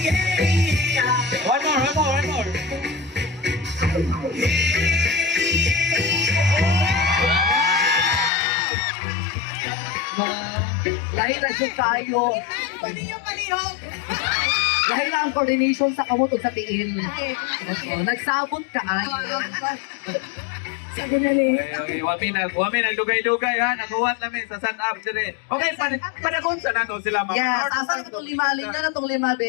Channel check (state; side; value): drops out; right; at 8.3 s